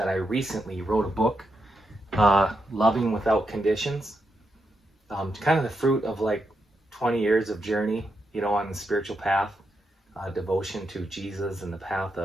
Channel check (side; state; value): both; normal; correlation 0.84